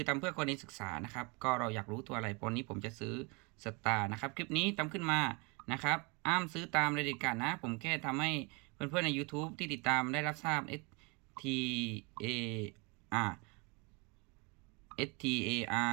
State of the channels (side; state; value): left; quieter; 29.4 dB